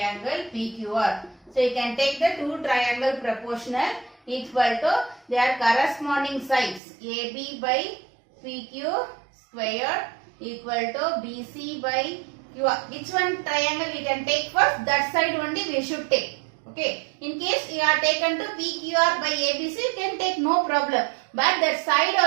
PQR. So you can take the two triangle proportional equal to their corresponding sides. AB by PQ square equal to BC by QR. Which one triangle we can take first? That side only we should take. Okay. In case you are taken to PQR by ABC, you can take no problem. But that side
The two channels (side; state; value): left; drops out; at 6.8 s